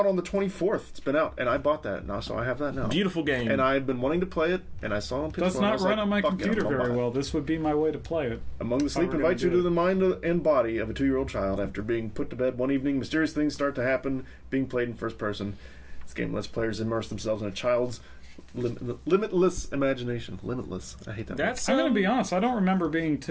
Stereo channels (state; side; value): identical; both; correlation 1.00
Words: on the 24th. It's been out, and I bought that now, so I have that now. Beautiful game. And I've been wanting to play it, and I saw it on PS4. Does and I not was run like, on my "Fuck it, computer I'm gonna very buy it." well. This would be my way to play it. Among the Sleep we're invites you gonna to do the mind and body of a 2-year-old child after being put to bed one evening. Mysterious things start to happen, being played in first person. This game lets players immerse themselves in a child's limitless imagination. Limitless. I hate that. That's I'm going to be honest. I don't remember being